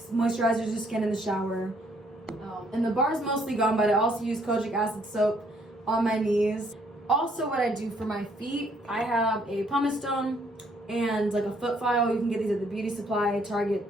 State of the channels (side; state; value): both; normal; correlation 0.67